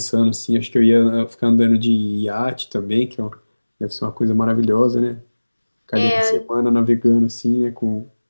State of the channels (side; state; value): both; inverted; correlation -1.00